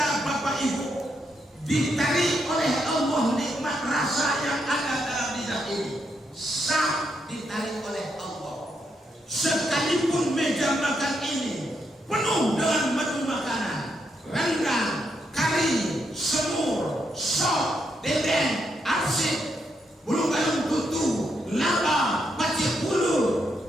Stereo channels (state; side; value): normal; both; correlation 0.79